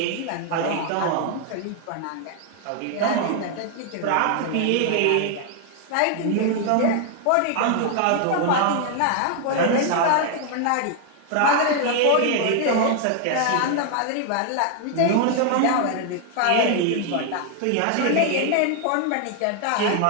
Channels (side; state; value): both; different; correlation 0.00